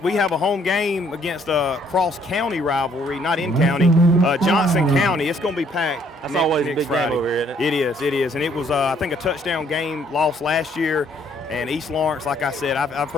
we have a home game against a cross-county rivalry, not in county, Johnson County. It's going to be packed. That's always a big Friday. game over here, isn't it? It is. And it was, I think, a touchdown game lost last year. And East Lawrence, like I said, I've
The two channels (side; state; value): both; normal; correlation 0.65